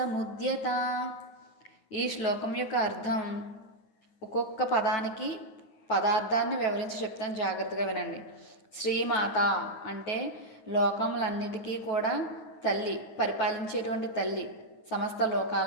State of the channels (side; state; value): right; late; 9.5 ms